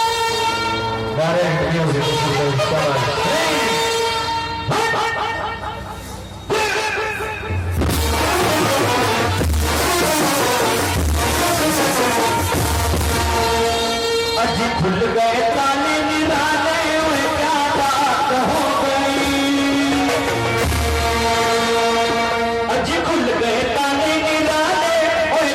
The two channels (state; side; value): identical; both; correlation 1.00